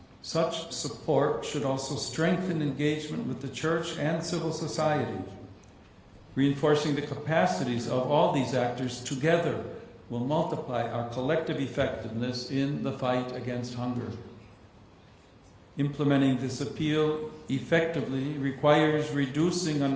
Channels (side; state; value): both; identical; correlation 1.00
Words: such support should also strengthen engagement with the Church and civil society. Reinforcing the capacities of all these actors together will multiply our collective effectiveness in the fight against hunger. Implementing this appeal effectively requires reducing